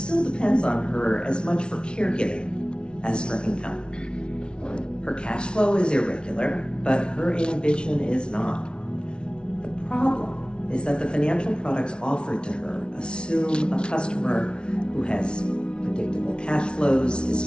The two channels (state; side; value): late; right; 0.056 ms